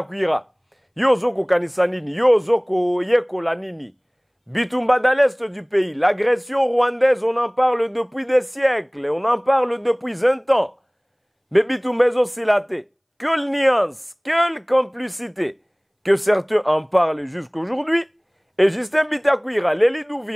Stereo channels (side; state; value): both; identical; correlation 1.00